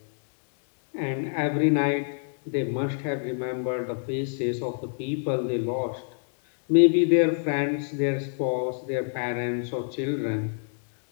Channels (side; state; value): right; silent; digital silence